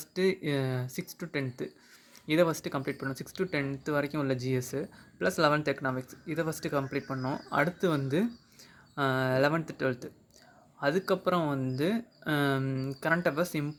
6 to 10th இதை ஃபஸ்ட்டு கம்ப்ளீட் பண்ணோம். 6 to 10th வரைக்கும் உள்ள ஜிஎஸ்ஸு ப்ளஸ் 11th எக்கனாமிக்ஸ் இதை ஃபஸ்ட்டு கம்ப்ளீட் பண்ணோம். அடுத்து வந்து 11th 12th, அதுக்கப்புறம் வந்து கரண்ட் அஃபேர்ஸ்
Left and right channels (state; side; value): identical; both; correlation 1.00